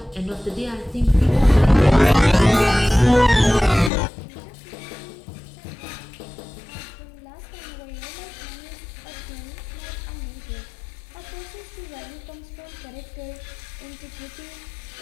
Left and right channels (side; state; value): right; drops out; at 3.9 s